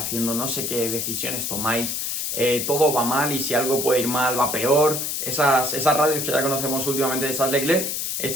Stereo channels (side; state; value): left; noise; hiss, 2 dB below the sound